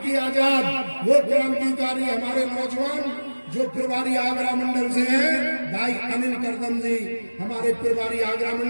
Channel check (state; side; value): inverted; both; correlation -1.00